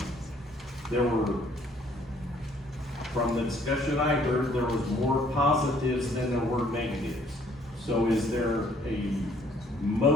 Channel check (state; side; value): normal; both; correlation 0.62